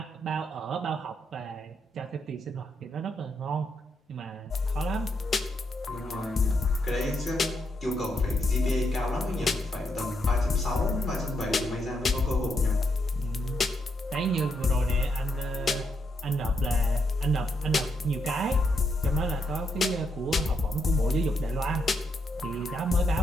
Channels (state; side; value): normal; both; correlation 0.79